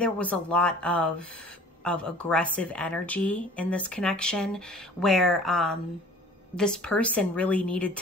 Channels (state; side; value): normal; both; correlation 0.48